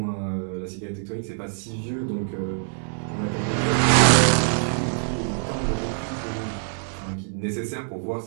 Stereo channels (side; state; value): left; silent; 62 dB below the other